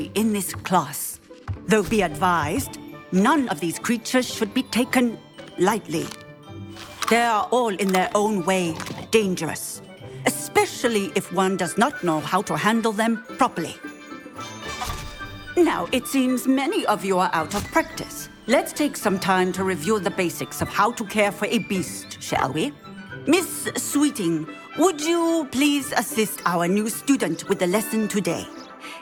in this class. Though be advised, none of these creatures should be taken lightly. They are all in their own way dangerous, especially if one does not know how to handle them properly. Now, it seems many of you are out of practice. Let's take some time to review the basics of how to care for a beast, shall we? Miss Sweeting, would you please assist our new student with the lesson today?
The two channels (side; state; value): both; identical; correlation 1.00